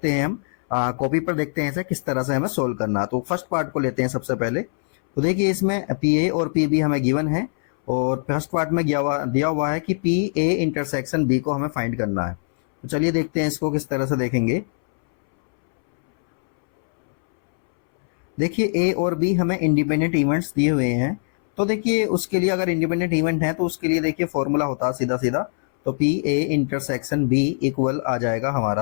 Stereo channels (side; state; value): right; silent; 64 dB below the other